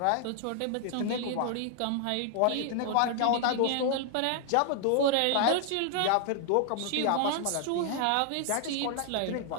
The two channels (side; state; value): both; different; correlation 0.00